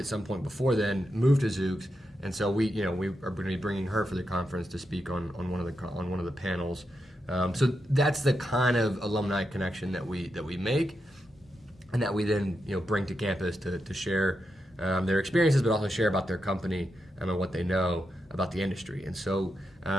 some point before then, moved to Zoox, and so we are going to be bringing her for the conference to speak on one of the panels. So that's the kind of alumni connection that we make, and that we then bring to campus to share their experiences, but also share about their company and what they know about the industry. And so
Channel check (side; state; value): both; normal; correlation 0.86